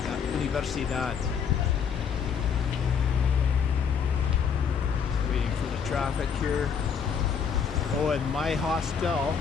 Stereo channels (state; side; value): quieter; right; 6.8 dB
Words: la universidad? Waiting for the traffic here. Oh, and my hostel,